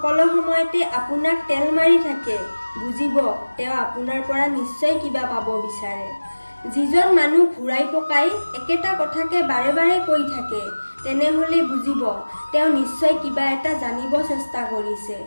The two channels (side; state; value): both; inverted; correlation -1.00